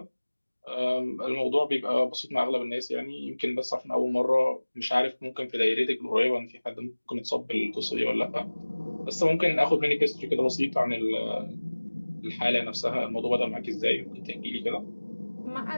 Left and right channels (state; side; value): inverted; both; correlation -1.00